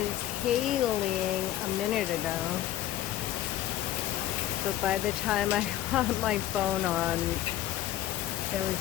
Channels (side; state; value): right; quieter; 13.5 dB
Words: hailing a minute ago. But by the time I got my phone on, there